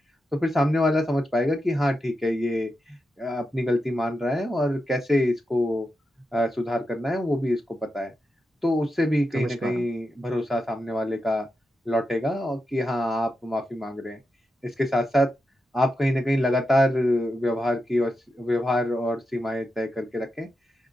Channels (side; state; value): both; normal; correlation 0.88